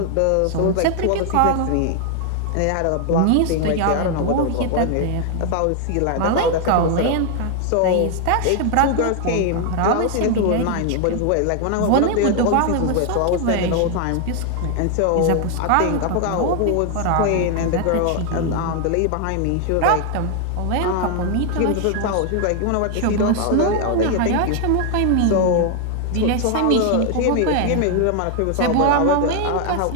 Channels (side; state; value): both; different; correlation 0.00